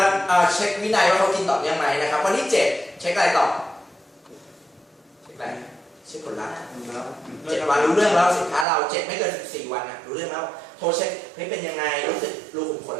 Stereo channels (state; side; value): drops out; left; at 8.7 s